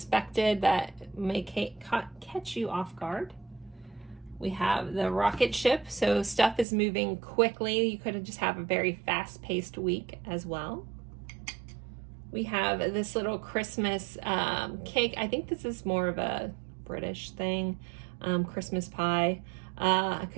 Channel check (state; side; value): drops out; left; at 6.7 s